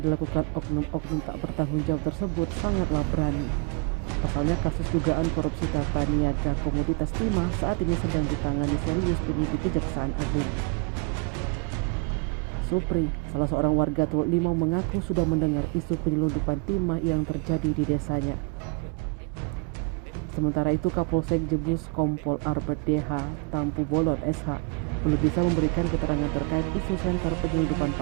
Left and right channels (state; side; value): quieter; left; 32.3 dB